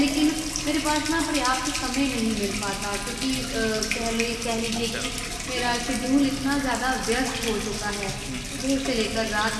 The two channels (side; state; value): both; identical; correlation 1.00